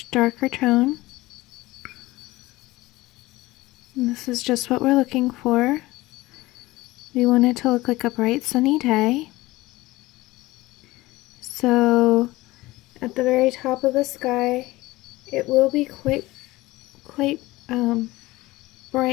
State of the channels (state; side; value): quieter; right; 19.2 dB